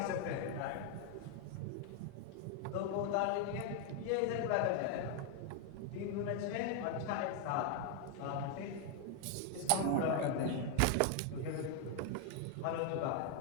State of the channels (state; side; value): different; both; correlation 0.00